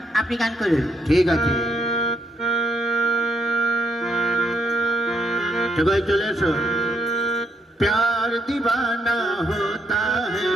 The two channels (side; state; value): both; normal; correlation 0.75